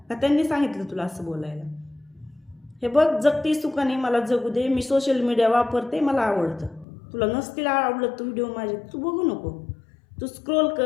का त्यांनी सांगितलं तुला असं बोलायला? हे बघ, जगती सुखाने मला जगू दे. मी सोशल मीडिया वापरते, मला आवडतं. तुला नसतील आवडत तू व्हिडिओ माझे, तू बघू नको. तू स्क्रोल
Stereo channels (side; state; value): right; drops out; at 6.9 s